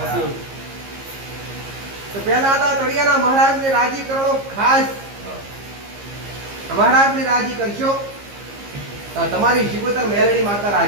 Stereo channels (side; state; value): left; late; 15 ms